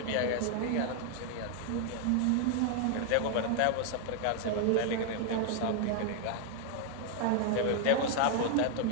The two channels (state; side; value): different; both; correlation 0.00